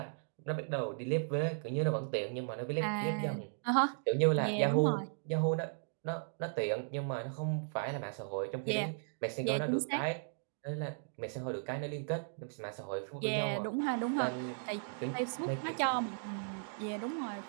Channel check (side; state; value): left; silent; digital silence